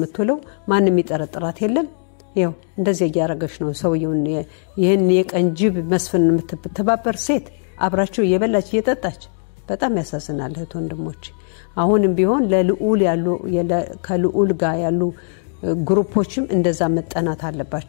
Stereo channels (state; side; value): silent; right; digital silence